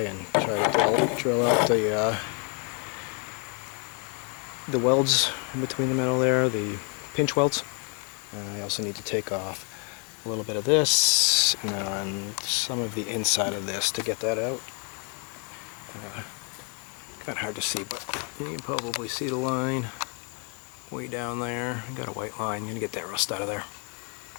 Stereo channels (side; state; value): right; quieter; 37.2 dB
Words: and try to drill out the welds in between the metal there, the pinch welds. I also need to take off a little bit of this and some of the inside of this to get that out. Kind of hard to see, but you can probably see the line way down there. I got a white line. I'm going to get that rust out of there.